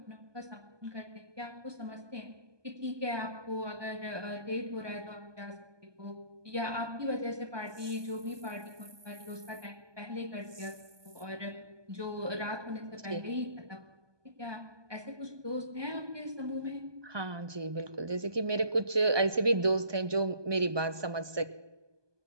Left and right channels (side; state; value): left; late; 1.2 ms